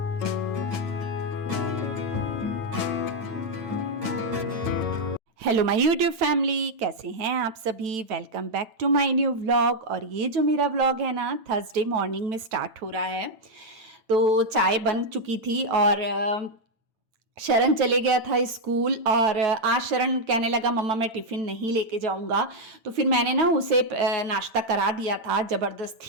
हेलो माय यूट्यूब फैमिली, कैसे हैं आप सभी। Welcome back to my new vlog. और ये जो मेरा व्लॉग है ना, थर्सडे मॉर्निंग में स्टार्ट हो रहा है। तो चाय बन चुकी थी और शरण चले गया था स्कूल। और आज शरण कहने लगा मम्मा मैं टिफ़िन नहीं लेके जाऊंगा। तो फिर मैंने ना उसे नाश्ता करा दिया था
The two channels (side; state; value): left; late; 9.1 ms